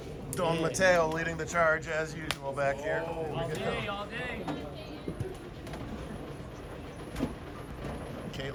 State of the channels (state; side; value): identical; both; correlation 1.00